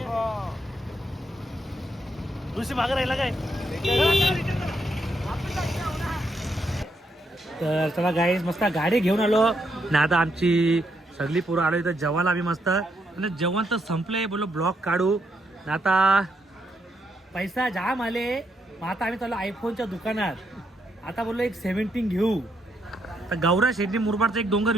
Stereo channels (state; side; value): normal; both; correlation 0.78